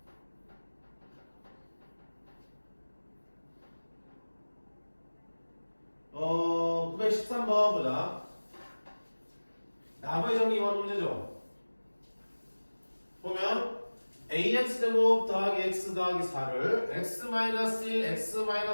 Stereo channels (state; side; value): inverted; both; correlation -1.00